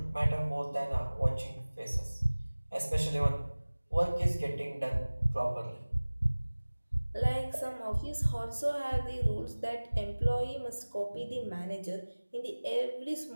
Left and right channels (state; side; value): inverted; both; correlation -1.00